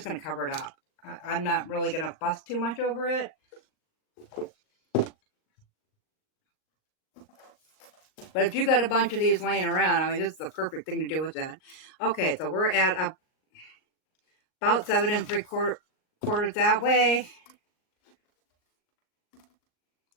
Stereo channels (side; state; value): right; late; 38 ms